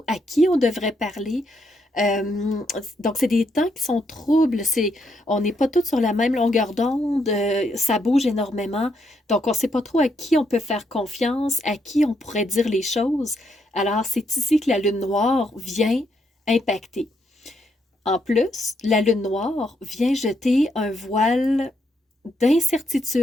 à qui on devrait parler. Donc, c'est des temps qui sont troubles. On n'est pas tous sur la même longueur d'onde. Ça bouge énormément. Donc, on ne sait pas trop à qui on peut faire confiance, à qui on pourrait dire les choses. Alors, c'est ici que la lune noire vient impacter. En plus, la lune noire vient jeter un voile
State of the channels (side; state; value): both; normal; correlation 0.77